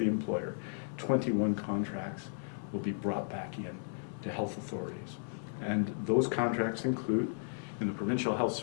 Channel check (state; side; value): silent; right; 55 dB below the other